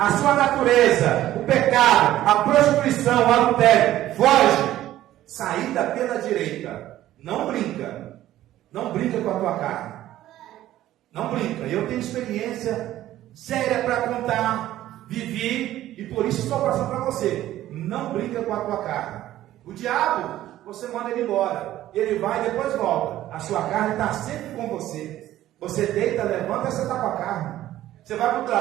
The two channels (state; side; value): quieter; left; 13.8 dB